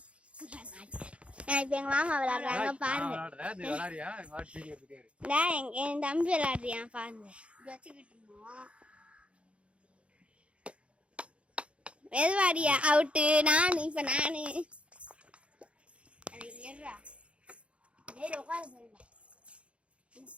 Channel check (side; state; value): left; late; 0.060 ms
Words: இப்ப எங்க மாமா விளையாடுறாங்க பாருங்க. என் தம்பி விளையாடுறியான் பாருங்க. வச்சுக்கிட்டு இருந்தோம். மெதுவாடியா அவுட்டு. நானு இப்ப நானு